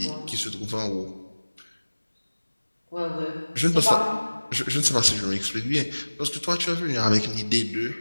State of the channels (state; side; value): inverted; both; correlation -1.00